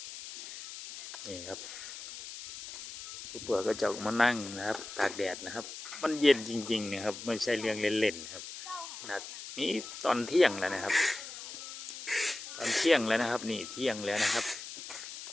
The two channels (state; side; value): noise; left; hiss, 11 dB below the sound